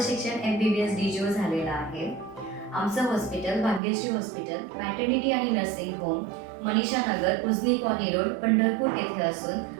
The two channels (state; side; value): drops out; left; at 3.8 s